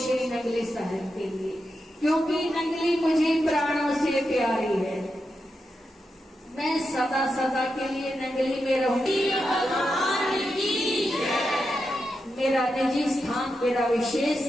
नंगली शहर के लिए, क्योंकि नंगली मुझे प्राणों से प्यारी है। मैं सदा सदा के लिए नंगली में रहूंगी। मेरा निजी स्थान, मेरा विशेष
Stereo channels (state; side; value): normal; both; correlation 0.87